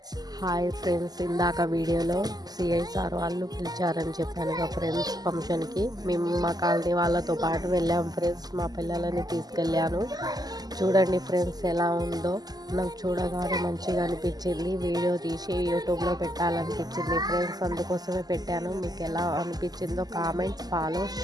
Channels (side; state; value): left; late; 0.19 ms